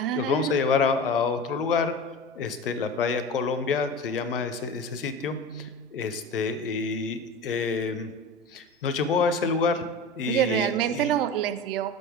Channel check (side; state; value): both; normal; correlation 0.31